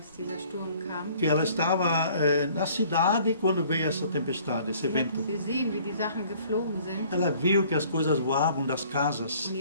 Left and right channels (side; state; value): both; inverted; correlation -0.56